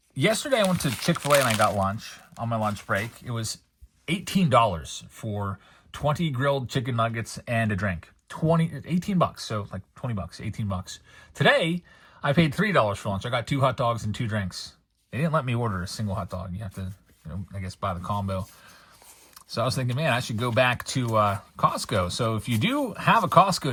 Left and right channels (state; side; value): identical; both; correlation 1.00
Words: yesterday I went to Chick-fil-A and I got lunch on my lunch break. It was $18 for 20 grilled chicken nuggets and a drink. $18, so like $20, $18. Today I paid $3 for lunch. I got 2 hot dogs and 2 drinks. They didn't let me order a single hot dog. You have to, you know, I guess buy the combo. So I was thinking, man, I should go back to Costco. So if you do have a